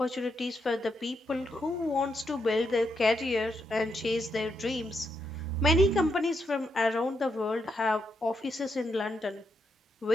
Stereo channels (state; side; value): normal; both; correlation 0.81